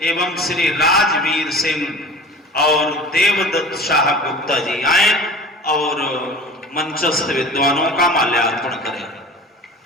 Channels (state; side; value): normal; both; correlation 0.39